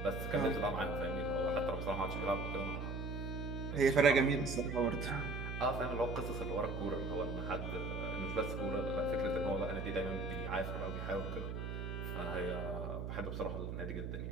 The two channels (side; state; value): right; noise; hum, 4 dB below the sound